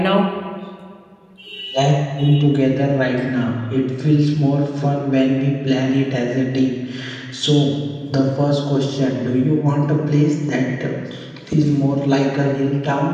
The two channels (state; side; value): identical; both; correlation 1.00